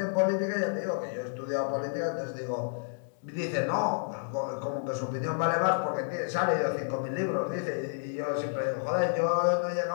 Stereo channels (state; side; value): silent; right; digital silence